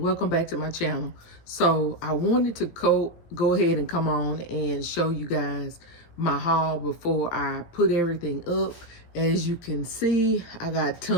back to my channel. So I wanted to go ahead and come on and show you guys my haul before I put everything up. As you can see, I got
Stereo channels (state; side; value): late; right; 17 ms